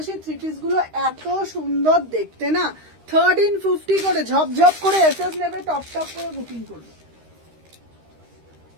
থ্রি পিস গুলো এত সুন্দর দেখতে না। 1350 করে ঝপঝপ করে এসএস নেবে, টপ টপ করে বুকিং করবে।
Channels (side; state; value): left; late; 13 ms